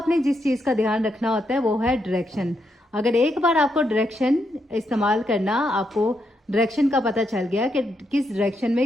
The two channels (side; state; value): both; normal; correlation 0.80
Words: जिस चीज़ का ध्यान रखना होता है वो है डायरेक्शन। अगर एक बार आपको डायरेक्शन इस्तेमाल करना, आपको डायरेक्शन का पता चल गया कि किस डायरेक्शन में